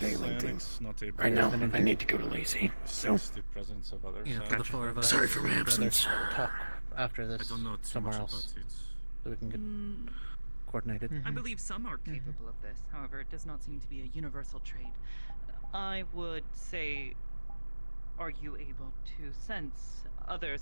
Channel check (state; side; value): inverted; both; correlation -1.00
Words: thing. Not able Right now, I need to go to Lazy. So, sense the presence of others. yeah, for the 4 of us. Sorry for my we'd rather absence. Talk after this I don't know too somewhere much else, about it. so we can get coordinated. I believe some are capable of this. However, it does not seem to be a universal trait. I would say, are you able to sense